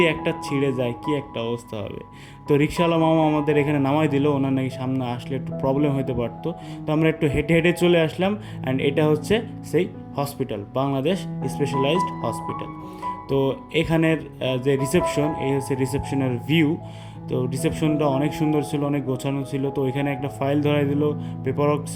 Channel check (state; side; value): identical; both; correlation 1.00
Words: একটা ছিঁড়ে যায় কি একটা অবস্থা হবে। তো রিক্সাওয়ালা মামা আমাদের এখানে নামাই দিল, ওনার নাকি সামনে আসলে একটু প্রবলেম হতে পারতো। তো আমরা একটু হেঁটে হেঁটে চলে আসলাম অ্যান্ড এটা হচ্ছে সেই হসপিটাল, বাংলাদেশ স্পেশালাইজড হসপিটাল। তো এখানের যে রিসেপশন, এই হচ্ছে রিসেপশনের ভিউ। তো রিসেপশনটা অনেক সুন্দর ছিল, অনেক গোছানো ছিল। তো এখানে একটা ফাইল ধরাই দিল, পেপার ওয়ার্ক